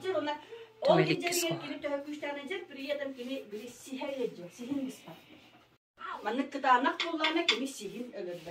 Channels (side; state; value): both; identical; correlation 1.00